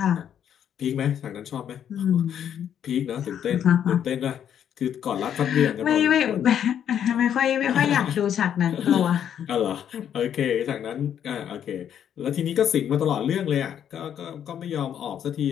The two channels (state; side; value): quieter; right; 9.3 dB